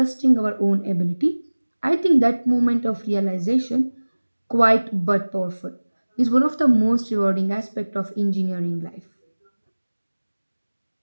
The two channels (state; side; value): inverted; both; correlation -1.00